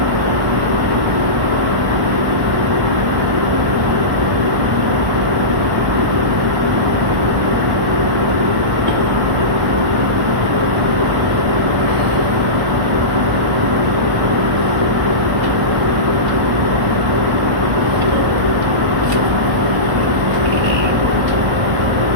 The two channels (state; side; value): late; left; 1.1 ms